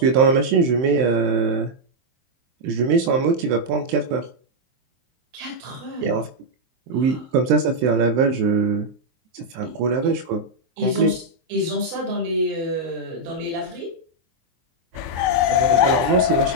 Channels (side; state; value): left; late; 23 ms